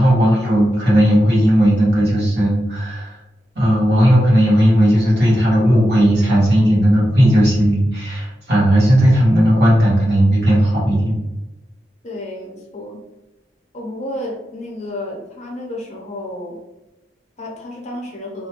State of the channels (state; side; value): normal; both; correlation 0.90